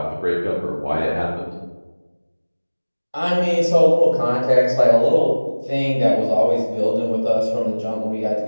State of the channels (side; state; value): both; inverted; correlation -1.00